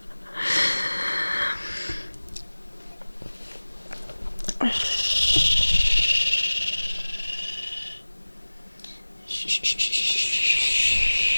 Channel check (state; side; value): inverted; both; correlation -1.00